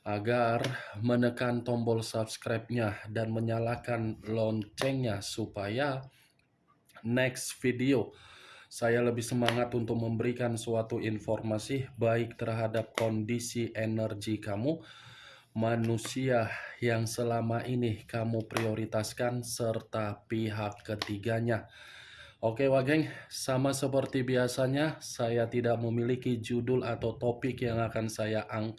agar menekan tombol subscribe-nya dan menyalakan loncengnya supaya next video saya lebih semangat untuk memberikan suatu informasi baik terhadap kondisi energi kamu, manusia yang selama ini kamu prioritaskan, serta pihak ketiganya. Oke Wageng, sama seperti biasanya, saya tidak memiliki judul atau topik yang akan saya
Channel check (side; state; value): both; identical; correlation 1.00